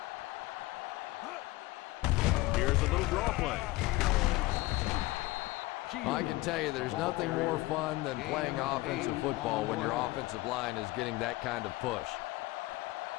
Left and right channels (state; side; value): quieter; right; 19.7 dB